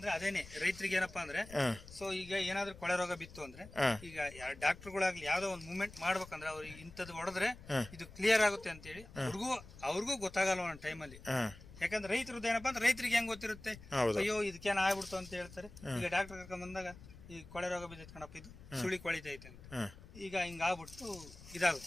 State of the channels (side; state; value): left; noise; rumble, 17 dB below the sound